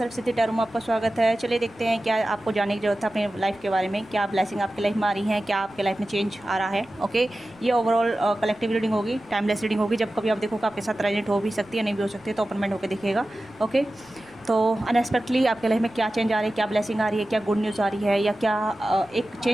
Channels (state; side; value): noise; right; rumble, 29 dB below the sound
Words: tarot में आपका स्वागत है। चलिए देखते हैं क्या आपको जानने की जरूरत है अपने लाइफ के बारे में, क्या ब्लेसिंग आपकी लाइफ में आ रही है, क्या आपके लाइफ में चेंज आ रहा है। ओके, ये ओवरऑल कलेक्टिव रीडिंग होगी, टाइमलेस रीडिंग होगी। जब कभी आप देखोगे आपके साथ रेजोनेट हो भी सकती है, नहीं भी हो सकती है, तो ओपन माइंड होकर देखिएगा। ओके, तो अनएक्सपेक्टली आपके लाइफ में क्या चेंज आ रही है, क्या ब्लेसिंग आ रही है, क्या गुड न्यूज़ आ रही है, या क्या एक